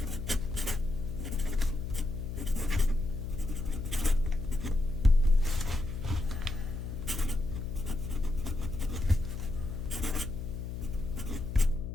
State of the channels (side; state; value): left; noise; hum, 6 dB below the sound